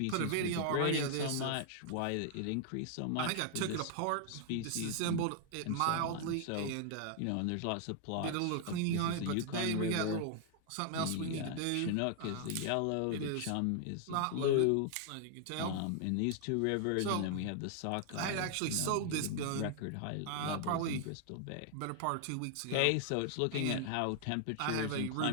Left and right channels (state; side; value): different; both; correlation 0.00